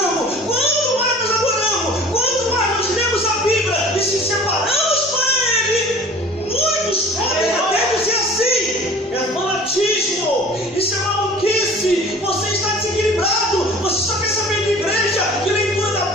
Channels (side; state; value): both; normal; correlation 0.45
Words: quanto mais nós adoramos, quanto mais nós lemos a Bíblia e se separamos para Ele, muitos podem até dizer assim: é fanatismo, isso é maluquice, você está desequilibrado, você só quer saber de igreja, de leitura da